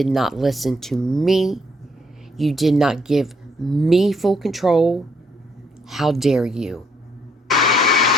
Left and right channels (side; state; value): both; normal; correlation 0.71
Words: not listen to me. You did not give me full control. How dare you?